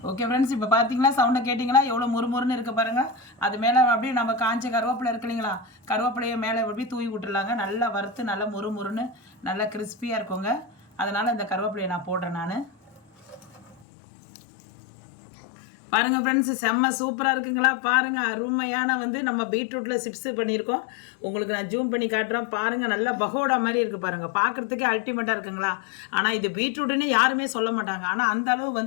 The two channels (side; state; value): right; drops out; at 13.9 s